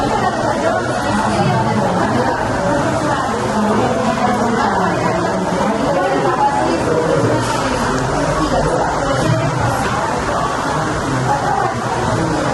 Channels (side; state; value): both; identical; correlation 1.00